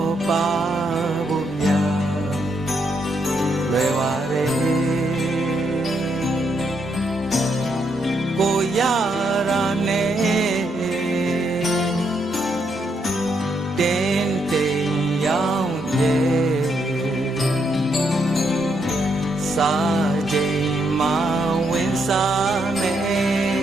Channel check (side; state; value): both; normal; correlation 0.77